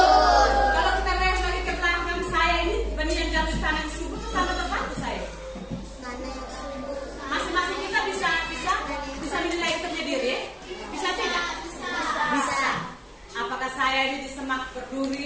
Kalau kita lihat lagi ke belakang saya ini, benih yang jatuh di tanah yang subur itu tanah berbatu saya. Masing-masing kita bisa menilai sendiri, bisa tidak? Bisa. Apakah saya ini di semak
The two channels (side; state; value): both; identical; correlation 1.00